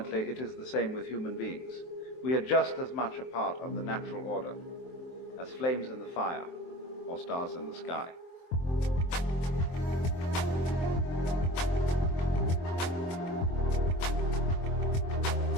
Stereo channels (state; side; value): late; right; 23 ms